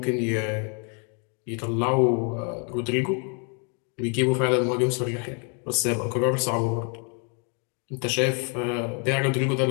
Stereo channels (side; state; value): right; quieter; 39.1 dB